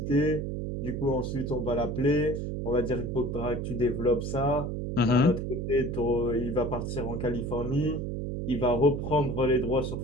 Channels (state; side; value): noise; right; hum, 3 dB below the sound